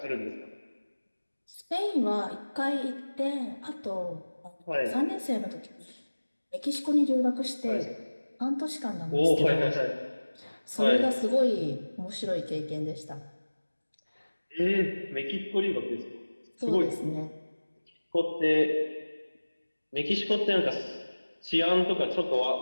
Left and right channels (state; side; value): inverted; both; correlation -1.00